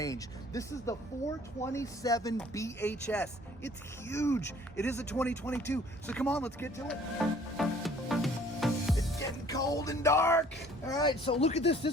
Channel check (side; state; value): both; normal; correlation 0.55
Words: This is the 427 BHS. It's huge. It is a 2022. So come on, let's get to it. It's getting cold and dark. All right, so look at this.